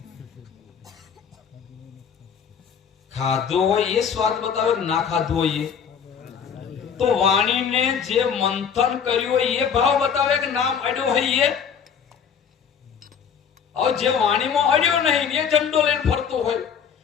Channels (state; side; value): quieter; right; 7.2 dB